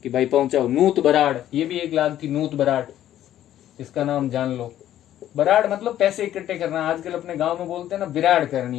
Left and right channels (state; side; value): quieter; right; 12.1 dB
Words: कि भाई पहुंचाओ। नूत बराड़ ये भी एक लाग थी, नूत बराड़, इसका नाम जान लो। बराड़ मतलब पैसे इकट्ठे करना, आजकल अपने गांव में बोलते हैं ना बिराड़